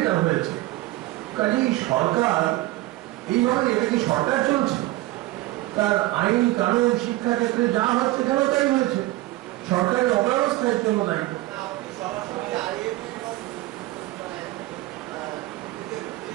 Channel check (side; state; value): left; quieter; 17.9 dB